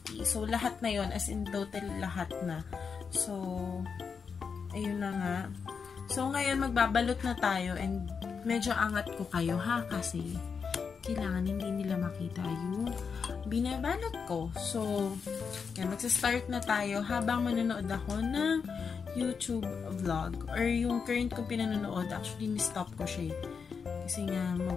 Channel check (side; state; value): right; quieter; 5.9 dB